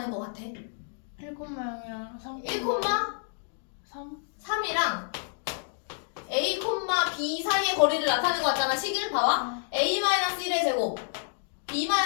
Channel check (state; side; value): silent; right; digital silence